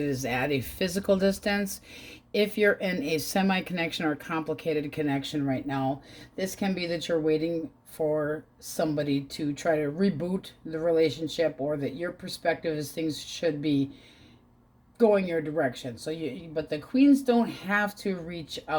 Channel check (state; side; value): identical; both; correlation 1.00